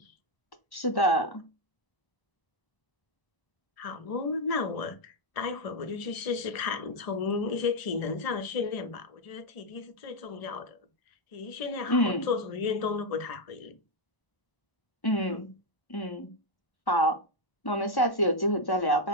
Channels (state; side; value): late; right; 1.0 ms